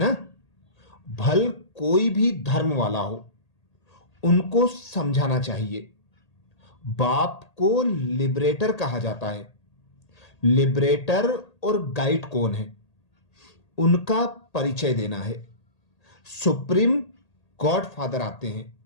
भल कोई भी धर्म वाला हो, उनको समझाना चाहिए। बाप को लिबरेटर कहा जाता है। लिबरेटर और गाइड कौन है, उनका परिचय देना है। सुप्रीम गॉड फादर आते हैं,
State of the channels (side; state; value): right; late; 1.8 ms